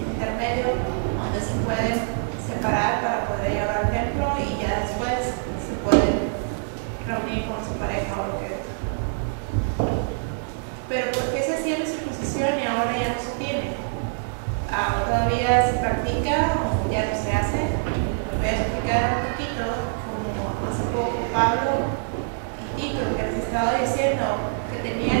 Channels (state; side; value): silent; left; 62 dB below the other